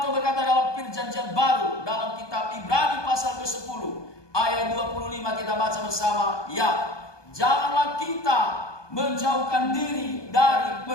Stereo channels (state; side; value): late; right; 1.2 ms